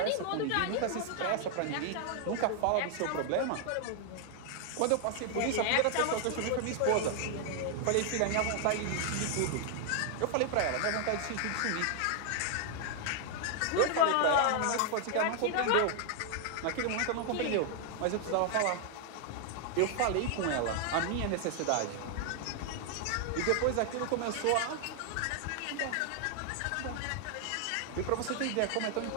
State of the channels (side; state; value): both; different; correlation 0.00